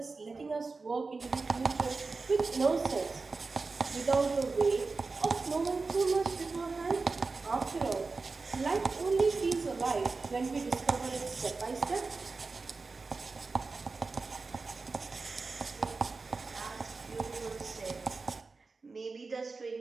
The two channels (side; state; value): left; quieter; 4.1 dB